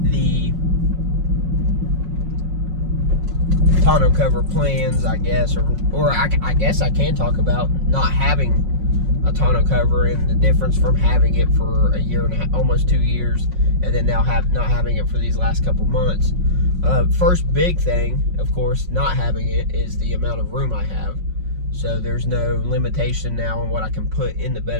tonneau cover plans, I guess, or I guess I can talk about not having a tonneau cover and the difference from having it for a year and a half, almost 2 years, and then now not having it for these last couple months. First big thing, of course, not having it is the amount of room I have. So there's no limitation now on what I can put in the bed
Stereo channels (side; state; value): left; late; 5.5 ms